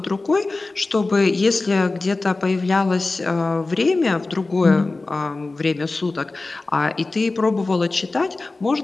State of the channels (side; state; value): right; quieter; 3.3 dB